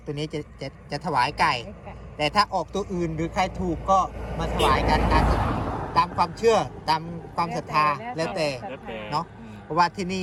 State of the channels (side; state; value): both; identical; correlation 1.00